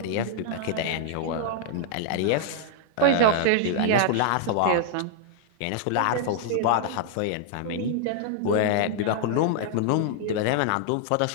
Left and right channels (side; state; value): both; different; correlation -0.01